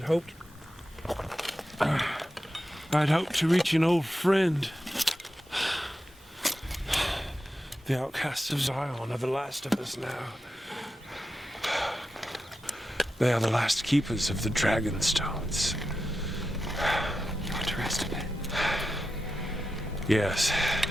to reach an old friend. The outcasts of Zion are the last of us now. They are the last keepers of the dragon stones. You want to rest a bit? Yes.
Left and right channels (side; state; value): both; normal; correlation 0.90